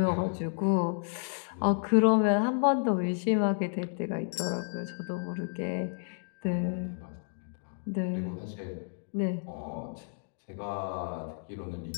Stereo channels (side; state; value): right; silent; digital silence